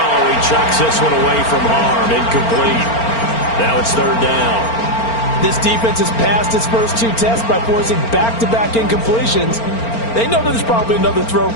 he chucks this one away from harm. Incomplete. Now it's third down. This defense has passed its first two tests by forcing back-to-back incompletions. They know there's probably another throw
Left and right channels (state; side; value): late; right; 4.4 ms